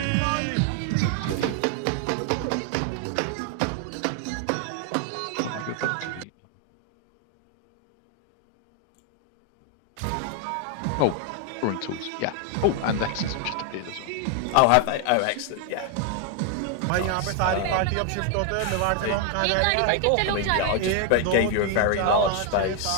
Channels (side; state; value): both; different; correlation 0.01